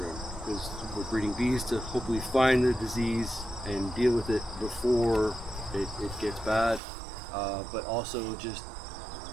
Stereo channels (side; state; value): left; drops out; at 6.8 s